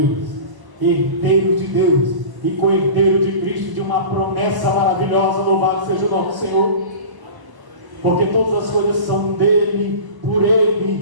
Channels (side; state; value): left; late; 1.1 ms